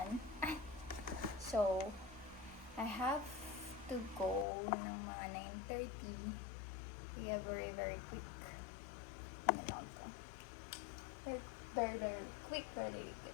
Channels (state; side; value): drops out; right; at 4.5 s